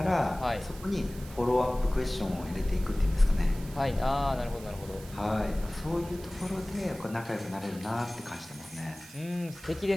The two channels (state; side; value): noise; right; hiss, 18 dB below the sound